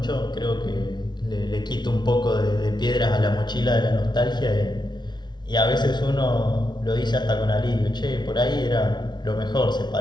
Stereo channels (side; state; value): right; late; 0.21 ms